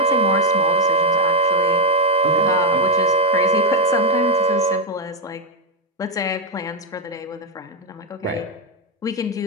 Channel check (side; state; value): both; normal; correlation 0.05